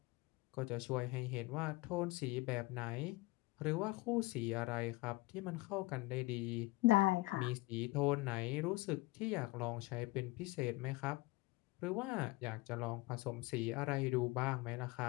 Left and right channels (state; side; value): quieter; right; 21.4 dB